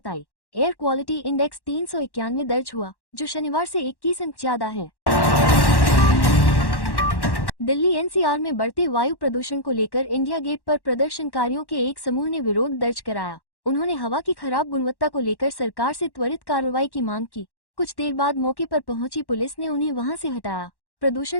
आई। एयर क्वालिटी इंडेक्स 391 दर्ज हुआ, जो शनिवार से 21 अंक ज्यादा है। दिल्ली NCR में बढ़ते वायु प्रदूषण को लेकर इंडिया गेट पर प्रदर्शनकारियों के एक समूह ने विरोध दर्ज कराया। उन्होंने हवा की खराब गुणवत्ता को लेकर सरकार से त्वरित कार्रवाई की मांग की। कुछ देर बाद मौके पर पहुंची पुलिस ने उन्हें वहां से हटाया।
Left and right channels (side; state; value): right; late; 1.1 ms